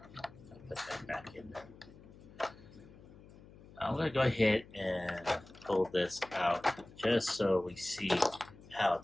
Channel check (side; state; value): left; noise; hum, 20 dB below the sound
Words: put that back in there. I'm going to go ahead and pull this out just so we see how